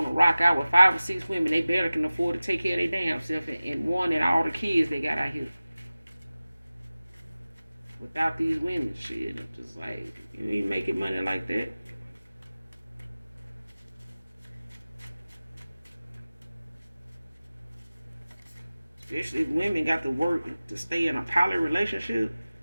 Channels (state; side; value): inverted; both; correlation -0.97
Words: rock out with 5 or 6 women. They barely can afford to take care of their damn self, and one and all the kids they got out here. Without these women, shit, I'm just like, you ain't making money like that. Especially if women got to work to stay in a poly relationship.